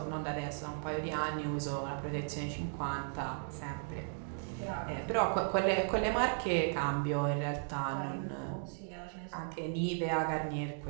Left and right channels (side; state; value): left; silent; 54 dB below the other